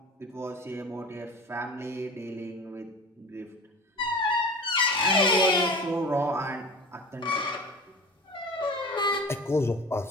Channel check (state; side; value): normal; both; correlation 0.36